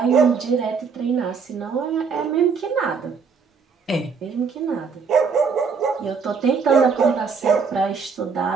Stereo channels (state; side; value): quieter; left; 5.5 dB